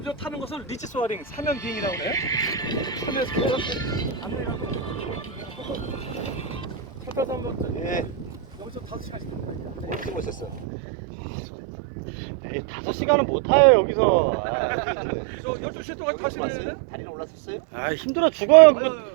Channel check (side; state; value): left; drops out; at 10.7 s